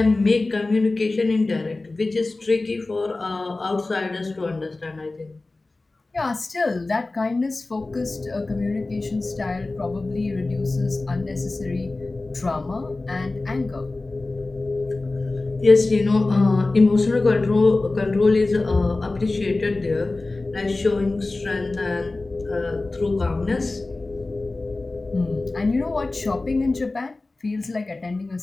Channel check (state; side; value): quieter; right; 3.2 dB